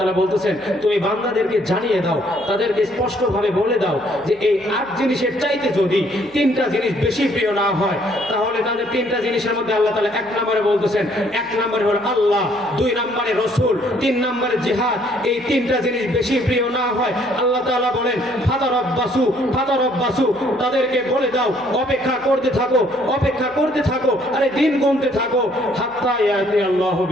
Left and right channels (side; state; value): right; noise; hum, 29 dB below the sound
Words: বলতেছেন তুমি বান্দাদেরকে জানিয়ে দাও, তাদেরকে স্পষ্টভাবে বলে দাও যে এই 8 জিনিসের চাইতে যদি 3টা জিনিস বেশি প্রিয় না হয়, তাহলে তাদের 3টা জিনিসের মধ্যে আল্লাহ তাআলা 1 নম্বরে বলতেছেন, 1 নম্বরে হলো আল্লাহ, 2 নম্বরে রাসূল, 3 নম্বরে জিহাদ। এই 3টা জিনিস বেশি প্রিয় না হয়, আল্লাহ তাআলা বলেন ফাতারাব্বাসু, তাদেরকে বলে দাও অপেক্ষা করতে থাকো, অপেক্ষা করতে থাকো, আরে দিন গুনতে থাকো, হাত্তা ইয়াতি আল্লাহু